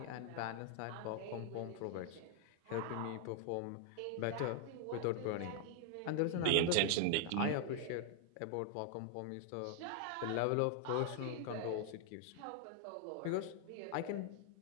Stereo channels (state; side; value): different; both; correlation 0.00